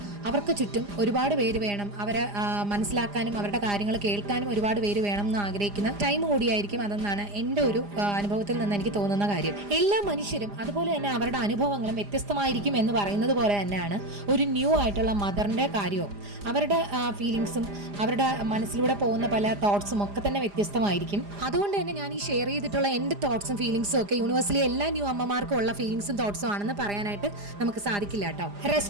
അവർക്ക് ചുറ്റും ഒരുപാട് പേര് വേണം, അവരെ മനസ്സിലാക്കാനും അവരുടെ കാര്യങ്ങൾ കേൾക്കാനും ഒരുപാട് പേര് വേണം എന്ന് ആഗ്രഹിക്കുന്ന ടൈം കൂടിയായിരിക്കും അതെന്നാണ് എൻ്റെ ഒരു അനുഭവത്തിൽ നിന്ന് എനിക്ക് തോന്നുന്ന കാര്യം. എല്ലാ മനുഷ്യരും അതുപോലെ തന്നെ അവരുടെ അനുഭവങ്ങളും വ്യത്യസ്തമായിരിക്കും എന്ന് പറയുന്നത് പോലെ തന്നെയാണ് ഒരു ന്യൂ ആയിട്ടുള്ള മദറിന്റെ കാര്യവും. അവരുടെ ഫീലിങ്സും അവരുടെ മനസ്സിലൂടെ പോകുന്ന പല തോട്ട്സും ഒക്കെ തന്നെ വ്യത്യസ്തമായിരിക്കും. അതുകൊണ്ട് തന്നെ ഞാൻ ഈ ഷെയർ ചെയ്തിട്ടുള്ള എൻ്റെ തോട്ട്സും ഫീലിങ്സും ഒക്കെ യൂണിവേഴ്സിലി എല്ലാ ന്യൂ അമ്മമാർക്കും ഉള്ള ഫീലിങ്സും തോട്ട്സും ആണെന്ന് പറയാനായിട്ട് നമുക്ക് സാധിക്കില്ല കേട്ടോ.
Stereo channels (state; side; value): late; left; 4.9 ms